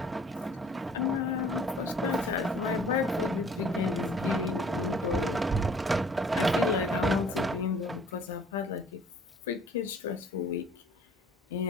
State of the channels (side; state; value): both; normal; correlation 0.54